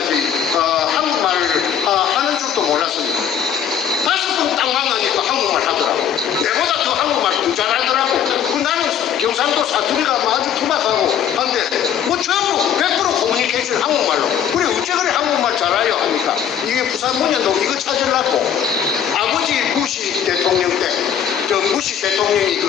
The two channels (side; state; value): right; quieter; 8.9 dB